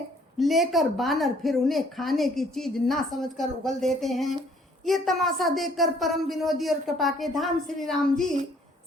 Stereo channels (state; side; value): normal; both; correlation 0.61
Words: लेकर बानर फिर उन्हें खाने की चीज ना समझकर उगल देते हैं। ये तमाशा देखकर परम विनोदी और कृपा के धाम श्री राम जी,